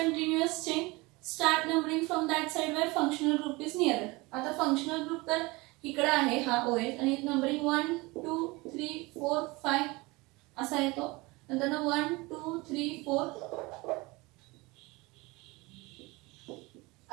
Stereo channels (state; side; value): quieter; left; 23.8 dB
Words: chain, start numbering from that side where functional group is near. आता फंक्शनल ग्रुप तर इकडे आहे हा OH आणि नंबरिंग 1, 2, 3, 4, 5 असा येतो. नंतर 1, 2, 3, 4.